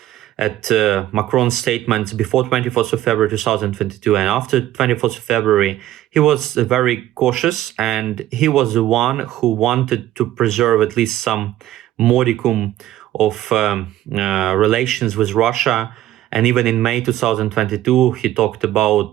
at Macron's statements before 24th of February 2022 and after 24th of February, he was very cautious, and he was the one who wanted to preserve at least some modicum of relations with Russia. And even in May 2022, he talked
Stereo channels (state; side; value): quieter; left; 13.8 dB